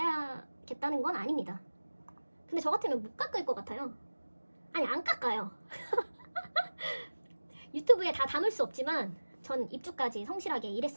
건 아닙니다. 근데 저 같으면 못 깎을 것 같아요. 아니, 안 깎아요. 유튜브에 다 담을 수 없지만 전 입주까지 성실하게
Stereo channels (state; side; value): inverted; both; correlation -1.00